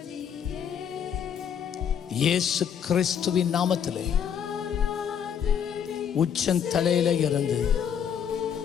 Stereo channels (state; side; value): quieter; right; 8.1 dB